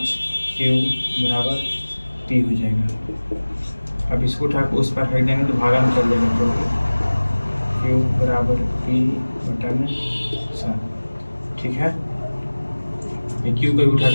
q बराबर p हो जाएगा। अब इसको उठा के उस पर फेंक देंगे तो भागा में चल जाएगा, तो q बराबर p/7, ठीक है। ये q को भी उठा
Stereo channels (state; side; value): inverted; both; correlation -1.00